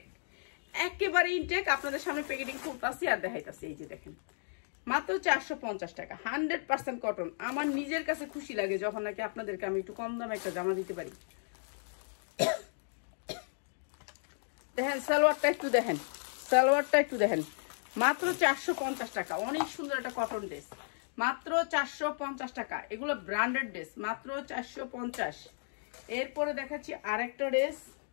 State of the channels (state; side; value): silent; right; digital silence